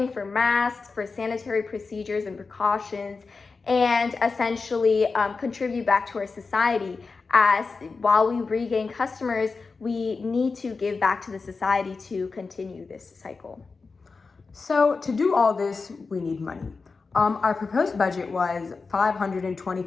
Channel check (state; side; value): quieter; right; 4.4 dB